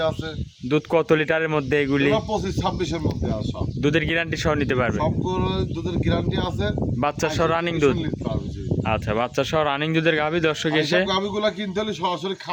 আছে। দুধ কত লিটারের মধ্যে এগুলি? 25-26 এর মধ্যে আছে সব। দুধের গ্যারান্টি সহ নিতে পারবে? সব গরুর দুধের গ্যারান্টি আছে। বাচ্চা সহ রানিং দুধ? নিতে পারবে, জি। আচ্ছা, বাচ্চা সহ রানিং দুধের গাভী দর্শক আর এসে। এইসব গাভীগুলা কিনতে হলে সরাসরি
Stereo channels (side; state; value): both; identical; correlation 1.00